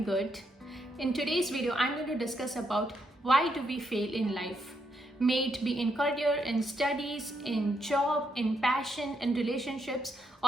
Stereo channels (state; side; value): normal; both; correlation 0.78